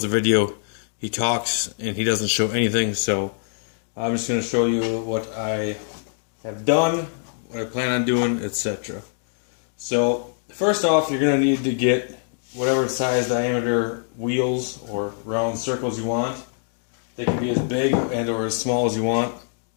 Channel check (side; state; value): right; silent; digital silence